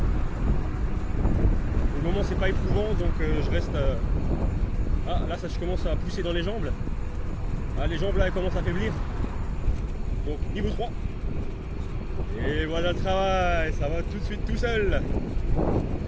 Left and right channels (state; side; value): identical; both; correlation 1.00